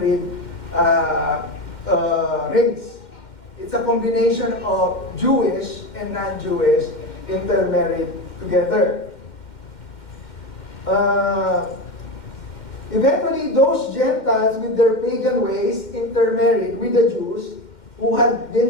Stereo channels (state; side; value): late; right; 2.1 ms